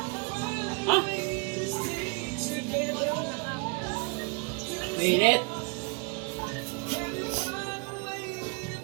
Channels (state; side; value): quieter; left; 31.3 dB